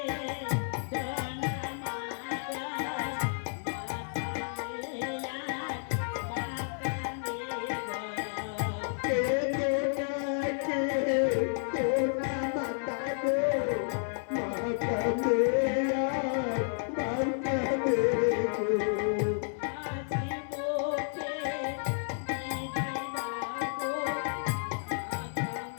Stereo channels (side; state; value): right; silent; digital silence